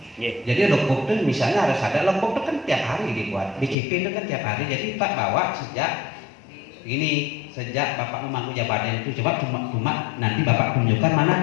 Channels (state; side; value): drops out; right; at 3.8 s